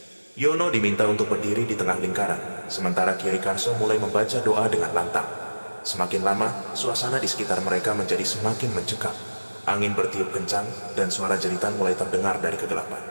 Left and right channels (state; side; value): inverted; both; correlation -1.00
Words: Yono diminta untuk berdiri di tengah lingkaran, sementara Kiai Karso mulai membaca doa dengan lantang. Semakin lama, suasana di sekitar mereka menjadi semakin mencekam. Angin bertiup kencang, dan suara jeritan mulai terdengar dari kegelapan.